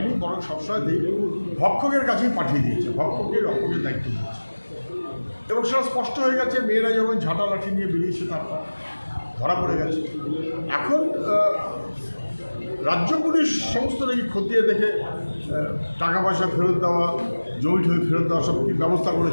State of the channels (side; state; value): both; inverted; correlation -1.00